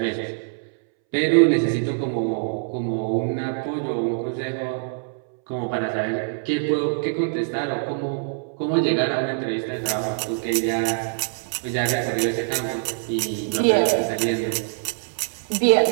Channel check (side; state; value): left; silent; 63 dB below the other